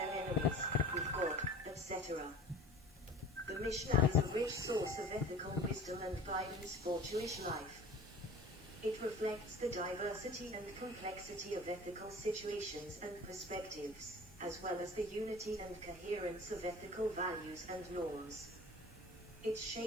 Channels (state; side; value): normal; both; correlation 0.42